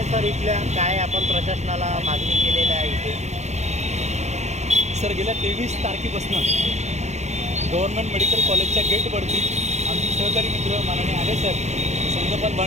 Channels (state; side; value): late; left; 0.33 ms